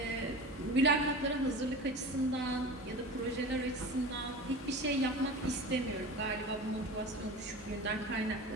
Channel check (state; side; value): normal; both; correlation 0.32